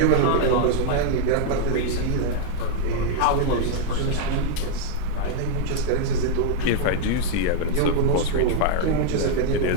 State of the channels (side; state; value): both; different; correlation 0.00